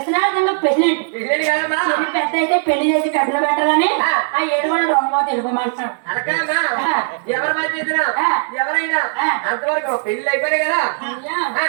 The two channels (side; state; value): left; silent; digital silence